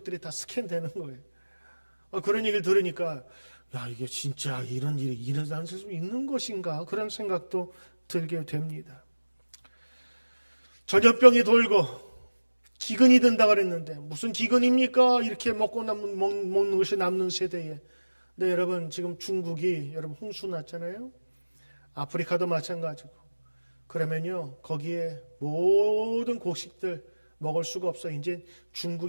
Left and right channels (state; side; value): inverted; both; correlation -1.00